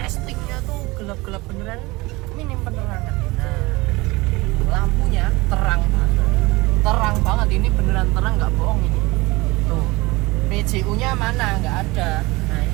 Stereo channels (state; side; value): quieter; left; 22.5 dB